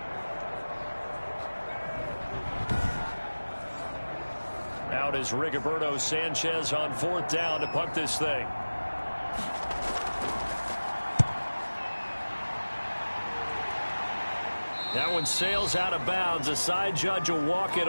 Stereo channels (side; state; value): both; inverted; correlation -1.00